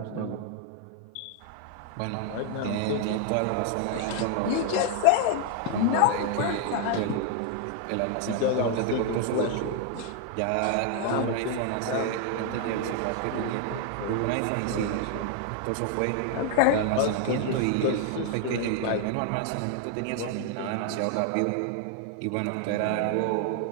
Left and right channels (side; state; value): both; different; correlation 0.00